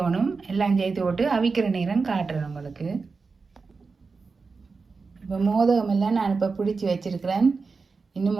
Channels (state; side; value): quieter; left; 4.5 dB